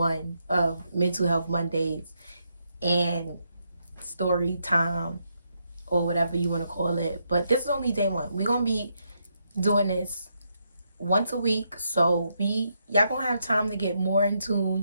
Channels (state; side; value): inverted; both; correlation -0.79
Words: of Mental Health Mondays and story time, or whatever you want to call it. But this is only day one. We're gonna be doing this once a week, so y'all gonna have time to get more in